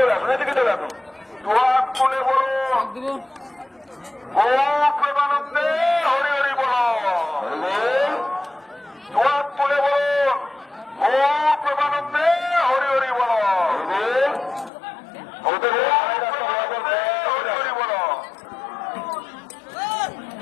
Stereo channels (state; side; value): drops out; right; at 14.7 s